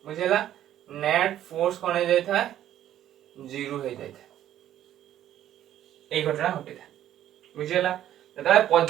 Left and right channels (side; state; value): left; quieter; 11.8 dB